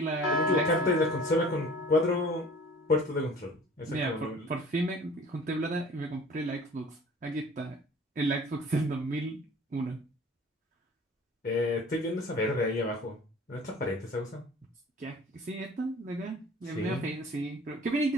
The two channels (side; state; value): both; normal; correlation 0.47